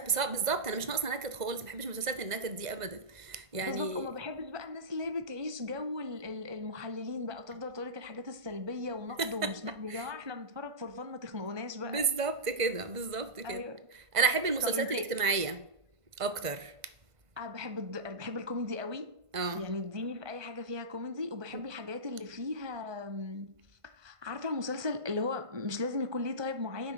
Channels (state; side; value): late; left; 1.5 ms